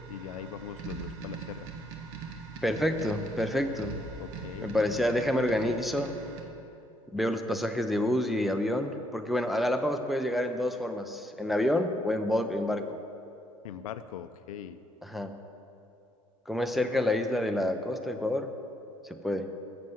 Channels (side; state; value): both; normal; correlation 0.74